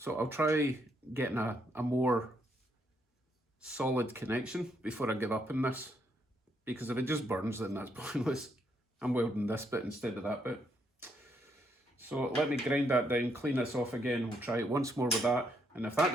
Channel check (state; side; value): normal; both; correlation 0.74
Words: I'll try getting a more solid connection before I give up on this, because if it just burns, then that's pointless. I'm welding this bit instead of that bit. So let me grind that down, clean this off again. We'll try it once more with that, and if that